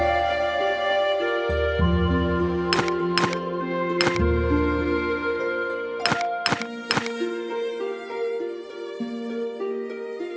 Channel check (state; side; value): identical; both; correlation 1.00